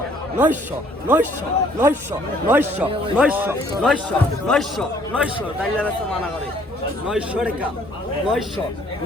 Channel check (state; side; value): normal; both; correlation 0.61